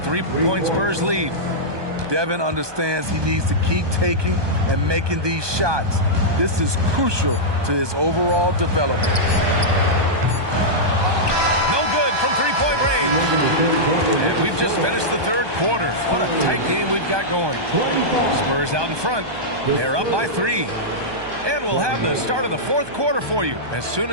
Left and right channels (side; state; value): left; late; 1.2 ms